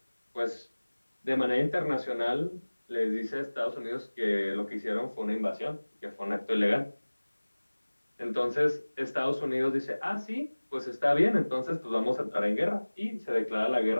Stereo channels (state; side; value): inverted; both; correlation -1.00